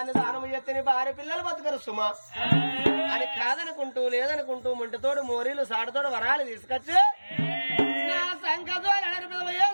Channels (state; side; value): inverted; both; correlation -1.00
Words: దానం చేస్తే నీ భార్య పిల్లలు బతకరు సుమా అని కాదనుకుంటూ లేదనుకుంటూ ముంటితోడు మోరీలు సాడతోడు వరాలు తీసుకొచ్చి నా సంకతోడు